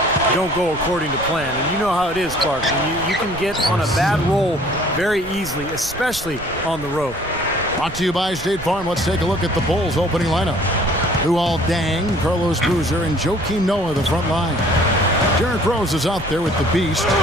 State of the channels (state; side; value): noise; right; rumble, 16 dB below the sound